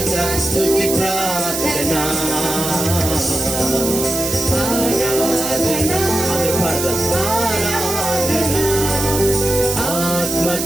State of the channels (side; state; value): right; noise; hiss, 3 dB below the sound